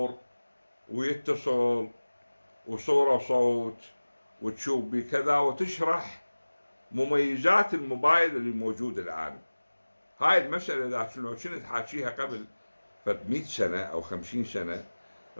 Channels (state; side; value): inverted; both; correlation -1.00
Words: ويتصل وصورة وصوت وتشوف بي كذا، وتشرح مميزات الموبايل اللي موجود الآن. هاي المسألة إذا كنت حاكيها قبل 100 سنة أو 50 سنة